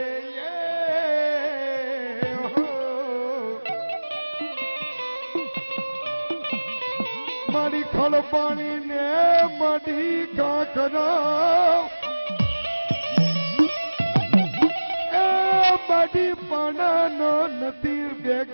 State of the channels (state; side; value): inverted; both; correlation -1.00